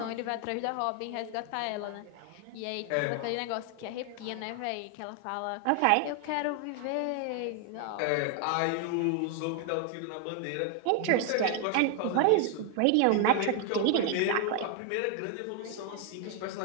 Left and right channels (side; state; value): both; different; correlation 0.00